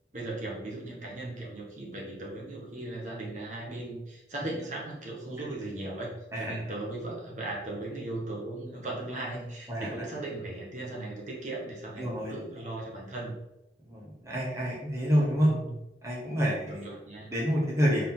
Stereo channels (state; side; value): normal; both; correlation 0.75